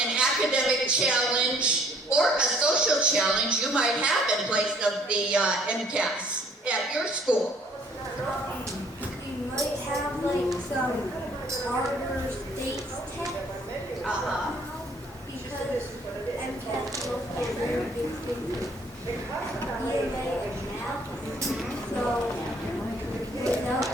academic challenge or a social challenge you might have in place of the MCAS at your school? You might have like some harder states test. Because MCAS is a very big thing. EMA and math. So without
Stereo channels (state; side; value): normal; both; correlation 0.60